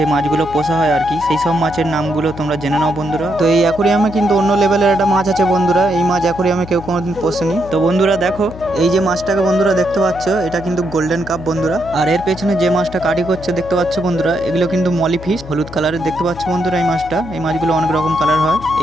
মাছগুলো পোষা হয় আর কি, সেই সব মাছের নামগুলো তোমরা জেনে নাও বন্ধুরা। তো এই অ্যাকোরিয়ামে কিন্তু অন্য লেভেলের একটা মাছ আছে বন্ধুরা, এই মাছ অ্যাকোরিয়ামে কেউ কোনোদিন পোষেনি। তো বন্ধুরা দেখো, এই যে মাছটাকে বন্ধুরা দেখতে পাচ্ছ, এটা কিন্তু গোল্ডেন কাপ বন্ধুরা। আর এর পেছনে যে মাছটা কাটি করছে দেখতে পাচ্ছ বন্ধুরা, এগুলো কিন্তু মলি ফিশ, হলুদ কালারের দেখতে পাচ্ছ বন্ধুরা। এই মাছটা, এই মাছগুলো অনেক রকম কালার হয়।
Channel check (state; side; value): noise; left; hum, 14 dB below the sound